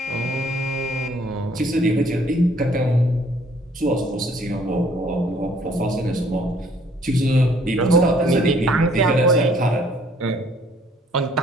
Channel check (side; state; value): both; normal; correlation 0.61